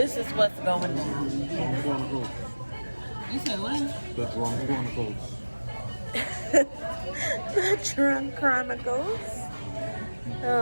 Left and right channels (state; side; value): inverted; both; correlation -1.00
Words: is what's going on. You said what? The Drunk Chronicles. The Drunk Chronicles.